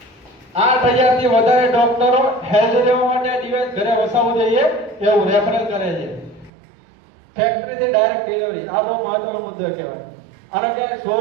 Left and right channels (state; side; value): drops out; left; at 6.5 s